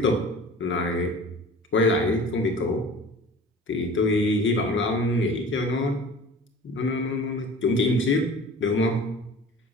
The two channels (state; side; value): normal; both; correlation 0.41